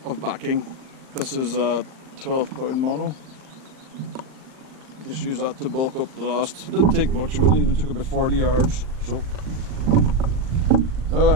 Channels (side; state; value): left; late; 38 ms